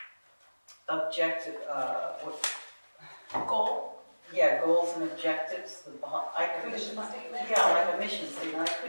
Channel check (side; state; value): both; inverted; correlation -1.00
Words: objective, Goal? yeah, goals and objectives. I couldn't. Mission statement? Yeah, like a mission statement. I